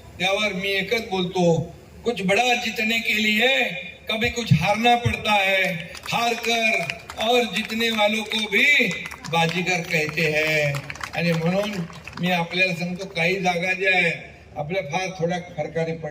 त्यावर मी एकच बोलतो, कुछ बड़ा जीतने के लिए कभी कुछ हारना पड़ता है, हार कर और जीतने वालों को भी बाजीगर कहते हैं. आणि म्हणून मी आपल्याला सांगतो, काही जागा ज्या आहेत आपल्या फार थोड्या फरकाने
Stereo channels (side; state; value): both; identical; correlation 1.00